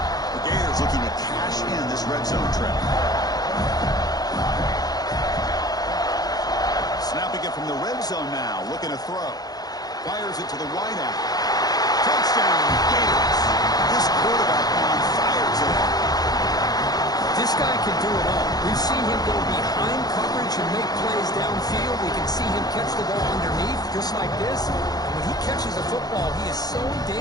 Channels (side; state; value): right; late; 0.19 ms